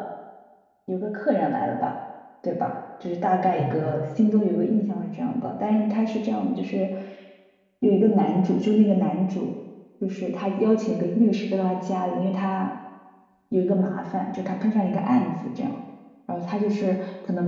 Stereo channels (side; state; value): both; identical; correlation 1.00